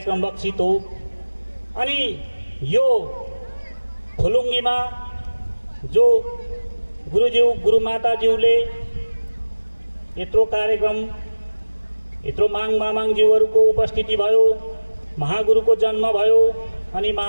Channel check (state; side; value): inverted; both; correlation -1.00